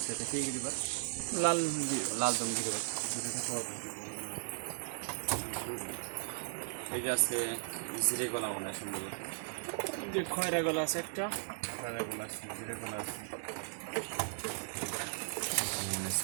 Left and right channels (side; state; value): left; silent; 53 dB below the other